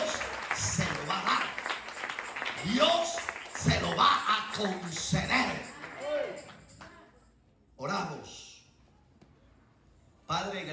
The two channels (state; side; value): identical; both; correlation 1.00